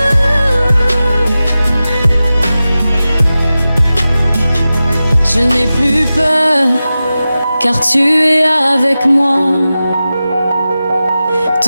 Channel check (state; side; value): inverted; both; correlation -0.95